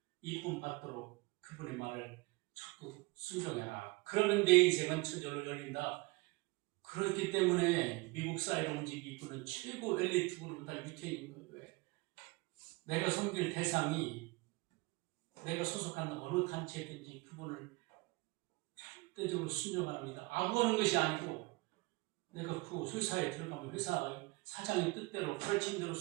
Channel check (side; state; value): left; quieter; 24.3 dB